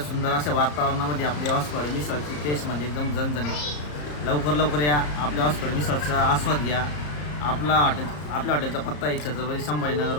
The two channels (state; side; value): late; right; 34 ms